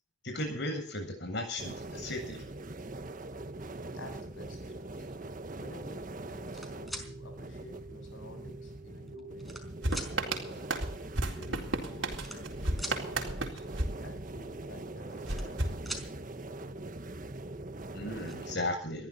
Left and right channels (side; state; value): both; normal; correlation 0.45